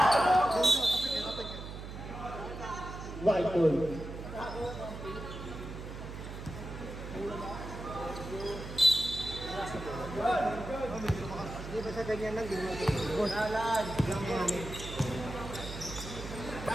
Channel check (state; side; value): noise; right; hum, 9 dB below the sound